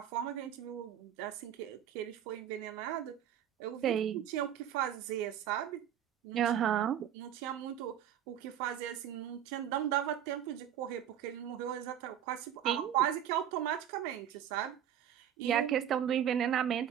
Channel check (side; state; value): left; quieter; 10.1 dB